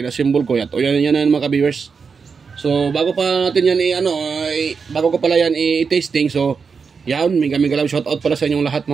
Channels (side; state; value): left; quieter; 5.5 dB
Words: ko yan. O yan na mga ka-viewers. So, bago pa natin yan bago ko pala yan i-tasting. So, yan, mega love shoutout pala sa inyong lahat